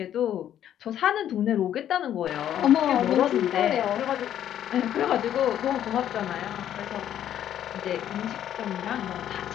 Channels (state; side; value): quieter; right; 10.7 dB